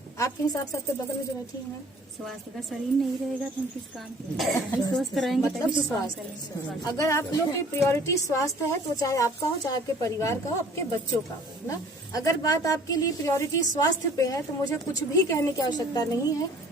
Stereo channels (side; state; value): both; normal; correlation 0.52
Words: आपके हिसाब से? आपके बगल में जो बैठी है, स्वास्थ्य का शरीर नहीं रहेगा तो हम किस काम के स्वस्थ रहेंगे? मतलब स्वास्थ्य, अगर आप लोग की प्रायोरिटी स्वास्थ्य है तो चाहे आपका हो, चाहे आपके परिवार का हो, आपके बच्चों का हो ना। अगर बात आपके लिए प्रायोरिटी स्वास्थ्य पे है तो मुझे कुछ भी कहने की आवश्यकता नहीं है।